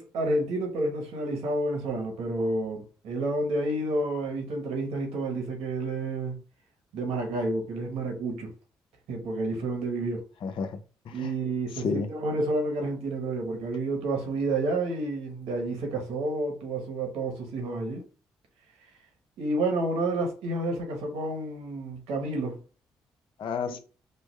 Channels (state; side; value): normal; both; correlation 0.60